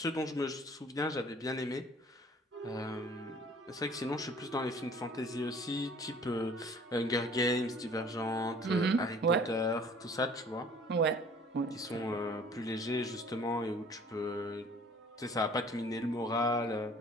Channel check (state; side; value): normal; both; correlation 0.52